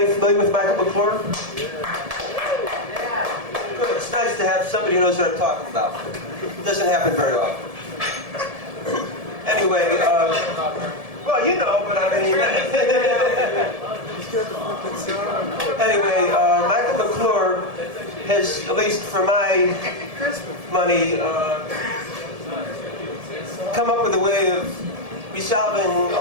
familiar with Michael McClure? Good. It's nice to have somebody who knows what I'm talking about. It doesn't happen very often. Anyway, well, you know, but I mean... Anyway, Michael McClure has, at least for my money, come up with a way of resolving a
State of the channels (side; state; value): left; late; 1.7 ms